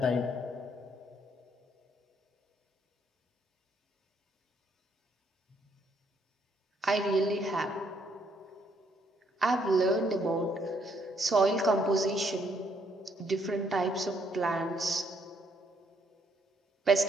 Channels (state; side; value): normal; both; correlation 0.70